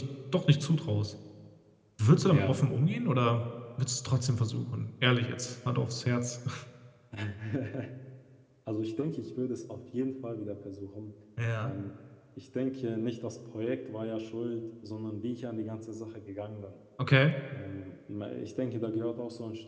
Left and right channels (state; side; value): identical; both; correlation 1.00